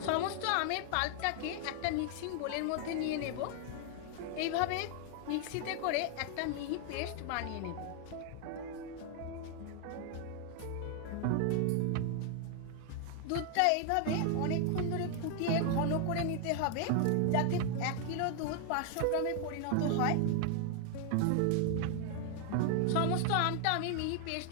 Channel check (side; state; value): both; different; correlation 0.00